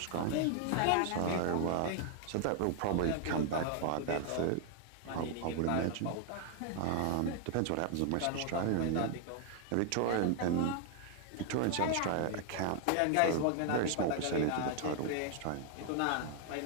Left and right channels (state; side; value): different; both; correlation 0.00